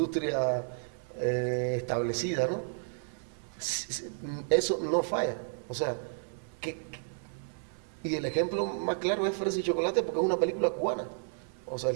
establecida, ¿no? Eso no falla. O sea, y el ejemplo más claro es Fresa y Chocolate, porque es una película cubana. O sea,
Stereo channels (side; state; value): left; silent; 56 dB below the other